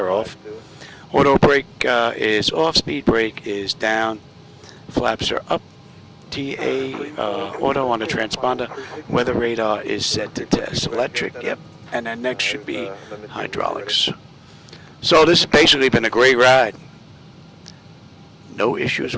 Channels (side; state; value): both; identical; correlation 1.00